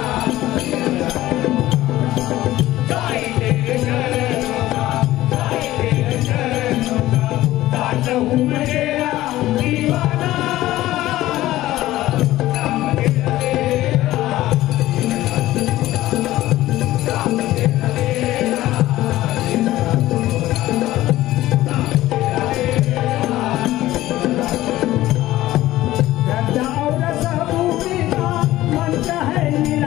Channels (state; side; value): quieter; right; 15.7 dB